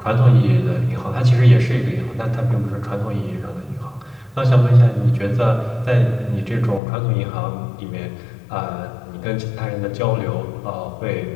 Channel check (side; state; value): right; drops out; at 6.8 s